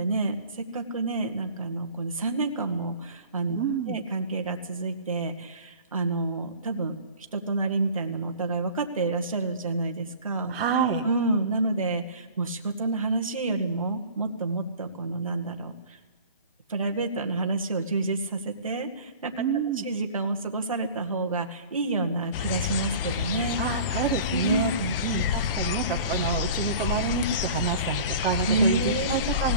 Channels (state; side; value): inverted; both; correlation -0.43